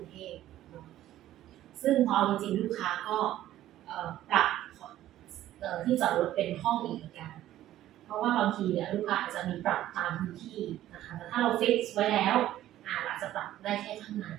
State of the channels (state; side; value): quieter; left; 13.4 dB